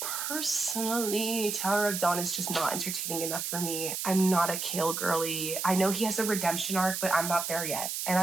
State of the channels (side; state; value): right; noise; hiss, 3 dB below the sound